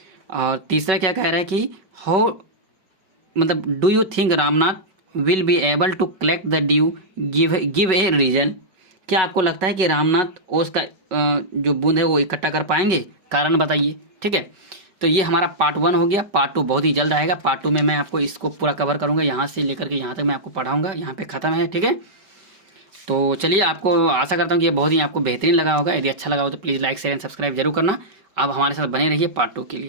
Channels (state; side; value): late; left; 5.2 ms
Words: और तीसरा क्या कह रहा है कि हाउ मतलब do you think Ramnath will be able to collect the dew, give a reason. क्या आपको लगता है कि रामनाथ ओस का जो बूंद है वो इकट्ठा कर पाएंगे, कारण बताइए। ठीक है। तो ये हमारा पार्ट 1 हो गया। पार्ट 2 बहुत ही जल्द आएगा। पार्ट 2 में मैं आपको इसको पूरा कवर करूँगा, यहाँ से लेकर के यहाँ तक मैं आपको पढ़ाऊँगा। यहाँ पे ख़त्म है। ठीक है। तो चलिए, आपको आशा करता हूँ कि ये बहुत ही आपको बेहतरीन लगा होगा। यदि अच्छा लगा हो तो please like share and subscribe जरूर करना। आप हमारे साथ बने रहिए पार्ट 2 के